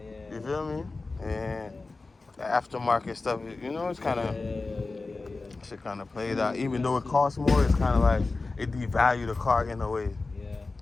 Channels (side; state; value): right; quieter; 3.6 dB